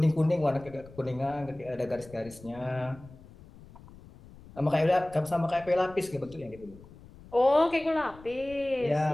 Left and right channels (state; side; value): noise; left; rumble, 20 dB below the sound